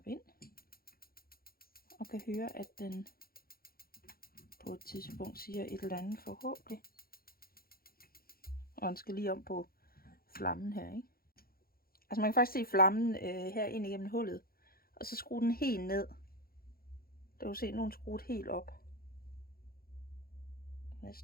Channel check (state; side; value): late; right; 0.43 ms